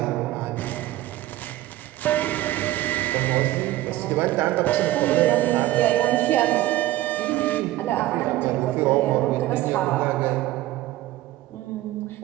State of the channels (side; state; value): left; quieter; 15.6 dB